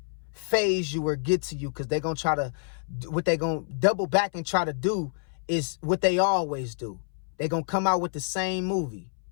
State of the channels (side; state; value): right; silent; 60 dB below the other